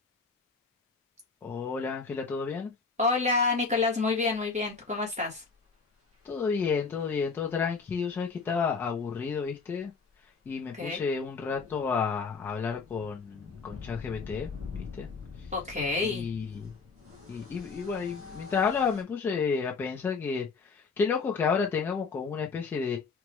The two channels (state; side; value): quieter; right; 4.7 dB